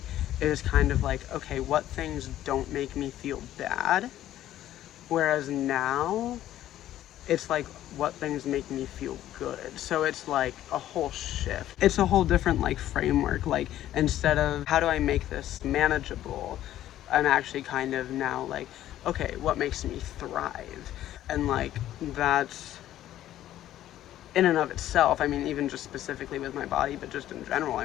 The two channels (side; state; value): right; quieter; 12.9 dB